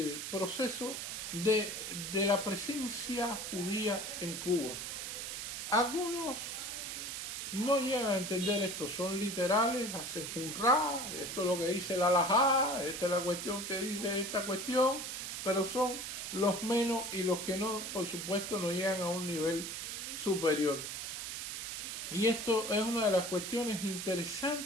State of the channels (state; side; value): noise; right; hiss, 5 dB below the sound